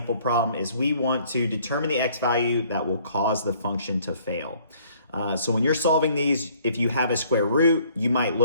problem is we want to determine the x value that will cause the function to fail. So when you're solving these, if you have a square root, you might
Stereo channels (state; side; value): inverted; both; correlation -0.60